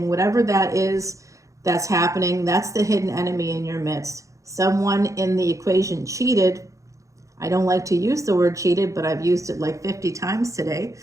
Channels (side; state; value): left; late; 0.15 ms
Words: Whatever that is that's happening, that's the hidden enemy in your midst. Someone in the equation cheated. I don't like to use the word cheated, but I've used it like 50 times today.